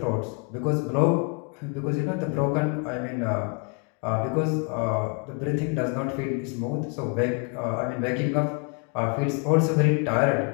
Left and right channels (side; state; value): right; quieter; 36.0 dB